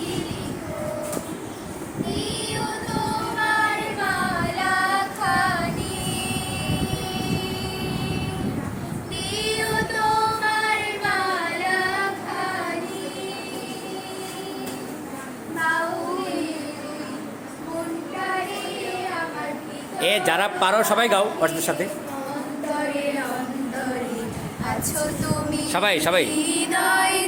লিখো। দিও তোমার মালাখানি, দিও তোমার মালাখানি, বাউলে মনটারে আমার এ যারা পারো সবাই গাও ওদের সাথে। অন্তরে অন্তরে আছো তুমি, সবাই সবাই। হৃদয়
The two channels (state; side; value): identical; both; correlation 1.00